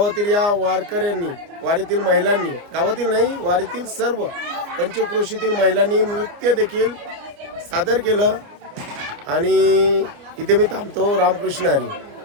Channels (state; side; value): late; left; 29 ms